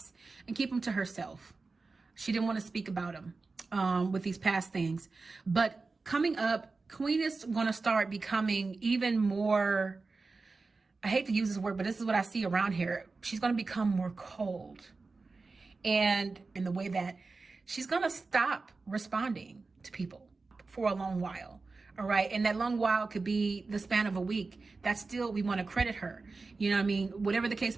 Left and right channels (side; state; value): left; quieter; 3.9 dB